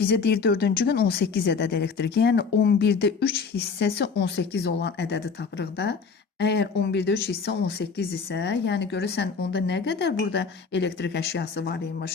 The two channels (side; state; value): right; quieter; 5.3 dB